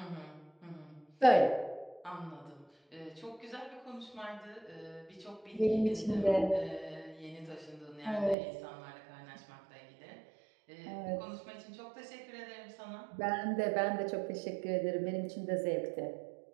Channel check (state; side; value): drops out; left; at 8.3 s